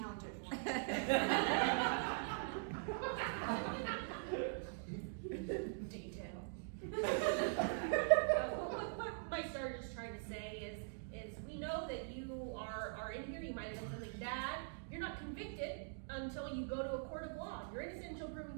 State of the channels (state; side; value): silent; left; digital silence